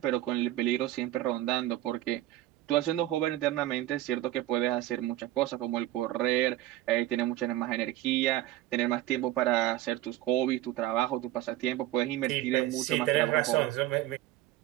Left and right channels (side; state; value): left; quieter; 14.8 dB